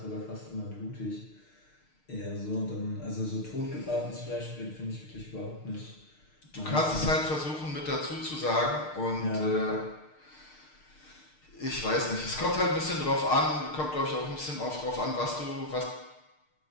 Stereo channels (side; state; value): right; late; 6.6 ms